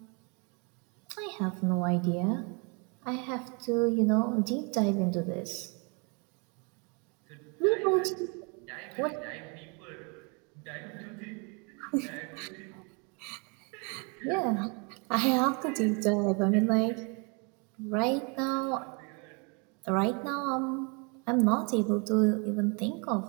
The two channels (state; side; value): quieter; left; 33.3 dB